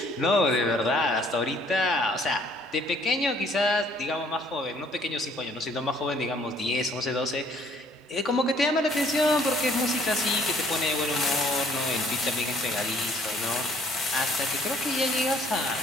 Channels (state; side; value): normal; both; correlation 0.61